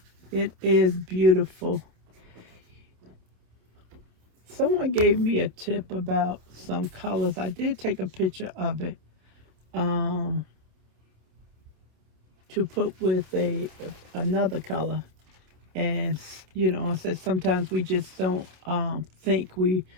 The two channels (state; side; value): late; left; 27 ms